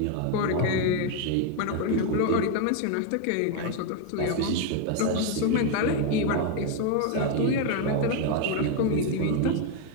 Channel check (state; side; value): different; both; correlation 0.01